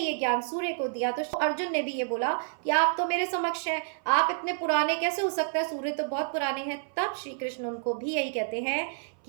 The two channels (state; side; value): silent; left; 56 dB below the other